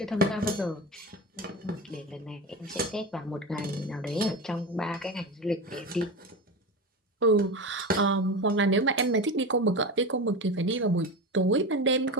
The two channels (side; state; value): both; normal; correlation 0.23